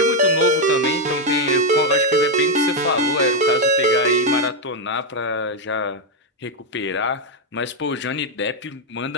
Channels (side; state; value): both; normal; correlation 0.03